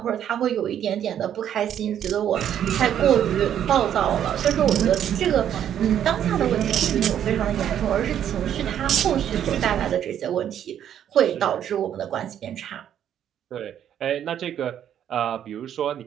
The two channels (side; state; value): left; quieter; 10.0 dB